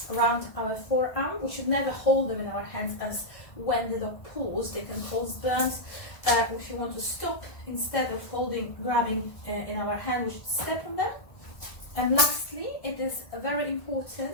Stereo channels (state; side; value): late; right; 1.5 ms